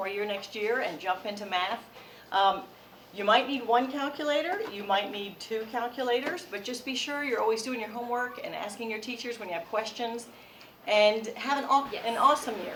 year next year and jump into math. You might need one calculator, you might need 2 calculators, but just be sure you're always doing your homework and asking your teachers when you have questions. And have an awesome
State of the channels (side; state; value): both; identical; correlation 1.00